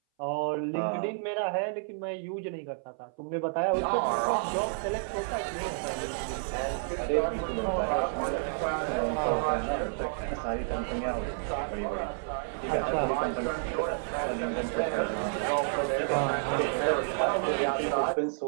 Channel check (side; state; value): left; silent; 58 dB below the other